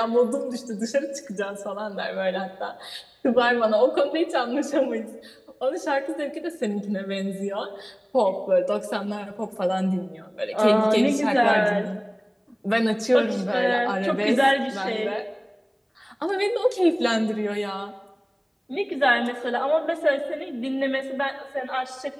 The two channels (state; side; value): identical; both; correlation 1.00